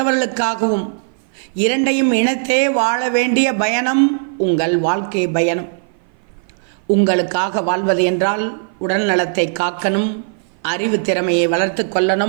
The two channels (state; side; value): silent; left; 56 dB below the other